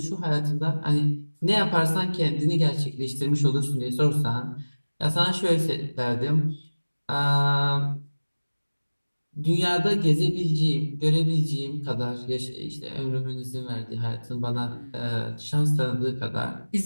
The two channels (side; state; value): both; inverted; correlation -1.00